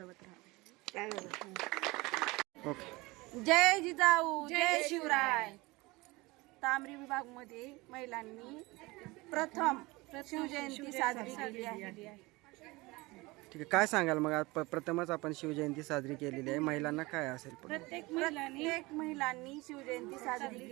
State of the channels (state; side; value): quieter; left; 22.7 dB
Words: राहावे. ओके. जय जिजाऊ, जय शिवराय. तांबरी विभागमध्ये महिलांनी प्रथम शिवजयंती साजरी केली आहे. ठीक आहे, काय सांगाल मग? आज प्रथमच आपण शिवजयंती साजरी केलेली आहे, महिलांना काय असेल? प्रत्येक महिलांनी शिवजयंती साजरी